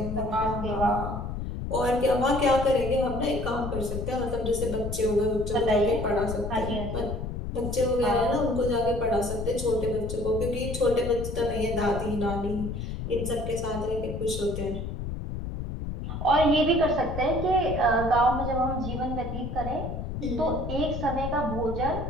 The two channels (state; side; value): noise; left; rumble, 5 dB below the sound